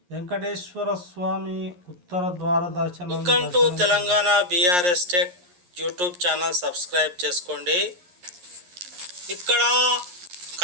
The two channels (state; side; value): late; left; 11 ms